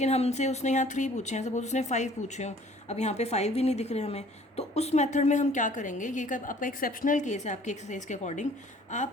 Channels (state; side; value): normal; both; correlation 0.54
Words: हमसे उसने यहाँ 3 पूछे हैं, सपोज उसने 5 पूछे हों, अब यहाँ पे 5 भी नहीं दिख रहे हमें। तो उस मेथड में हम क्या करेंगे, ये आपका एक्सेप्शनल केस है आपकी एक्सरसाइज के अकॉर्डिंग।